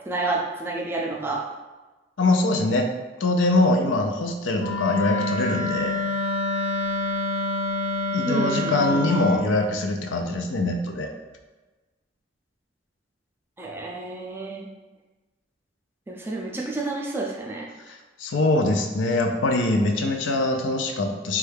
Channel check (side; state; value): both; normal; correlation 0.34